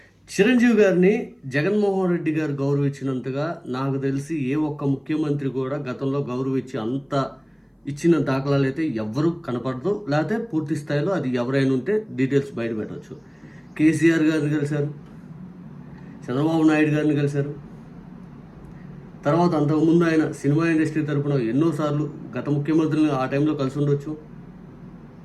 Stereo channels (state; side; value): identical; both; correlation 1.00